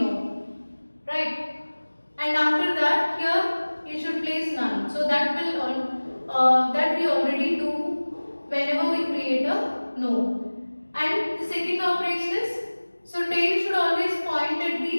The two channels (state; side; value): inverted; both; correlation -1.00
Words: node, right? And after that, here you should place none. So that will that we already do whenever we create a node. And the second operation is, so tail should always point at